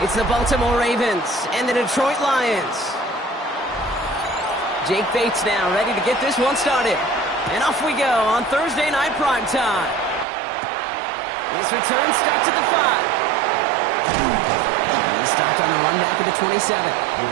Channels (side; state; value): left; drops out; at 10.2 s